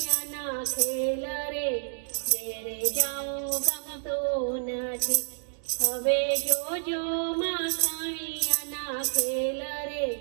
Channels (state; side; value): silent; left; digital silence